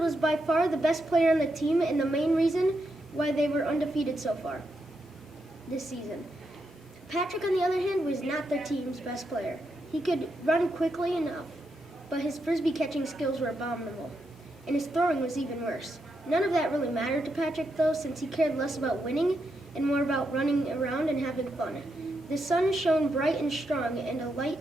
by far the best player on the team and the main reason why they were undefeated so far this season. Patrick, on the other hand, was not their team's best player. He could run quickly enough, but his frisbee catching skills were abominable, and his throwing was even worse. None of that really mattered to Patrick, though, since he cared less about winning and more about running around and having fun. The sun shone bright and strong, and a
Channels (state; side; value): normal; both; correlation 0.83